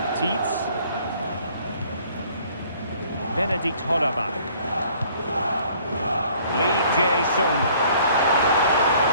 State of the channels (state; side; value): inverted; both; correlation -0.58